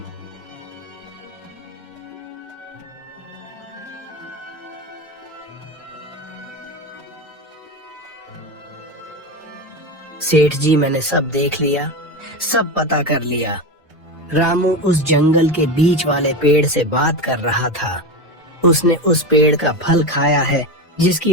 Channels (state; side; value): normal; both; correlation 0.20